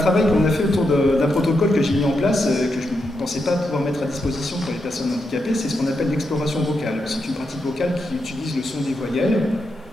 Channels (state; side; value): normal; both; correlation 0.84